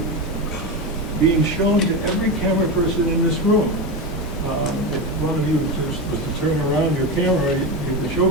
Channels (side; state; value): both; normal; correlation 0.17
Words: being shown to every camera person in this room. If one of you was to turn around your camera, you could show